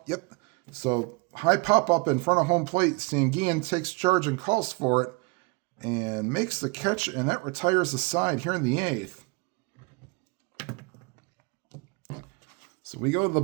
Yep. So high pop-up in front of home plate. Sanguin takes charge and calls for it and makes the catch, and that retires the side here in the 8th. So we go to the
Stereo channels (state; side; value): quieter; left; 29.1 dB